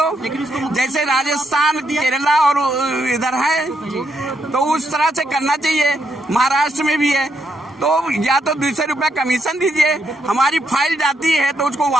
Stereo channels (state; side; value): normal; both; correlation 0.77